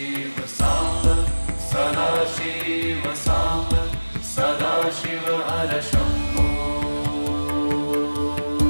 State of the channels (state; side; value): inverted; both; correlation -1.00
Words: साम्ब सदाशिव साम्ब सदाशिव हर शम्भो